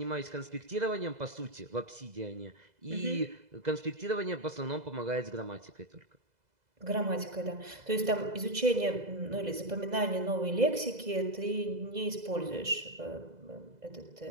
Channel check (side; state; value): left; late; 2.0 ms